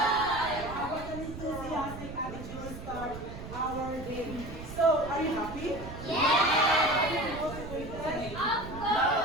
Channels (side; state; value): right; noise; rumble, 11 dB below the sound